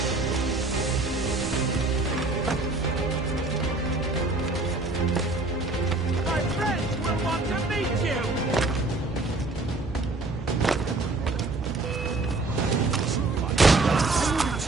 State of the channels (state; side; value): quieter; left; 3.2 dB